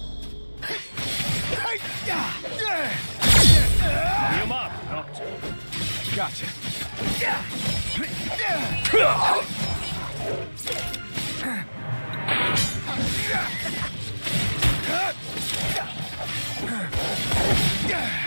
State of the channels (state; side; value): inverted; both; correlation -1.00